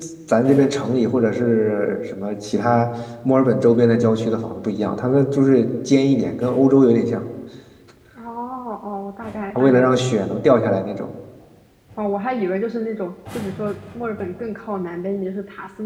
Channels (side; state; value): both; identical; correlation 1.00